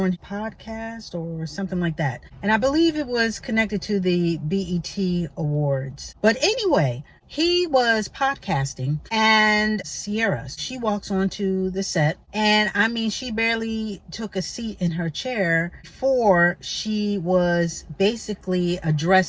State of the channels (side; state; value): both; identical; correlation 1.00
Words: a podcast or something like that. And I believe it was connected to the BET Awards. But anyway, he was podcasting, and Ciara, she walks onto the set, and I mean, she barely took a seat in her chair before she was basically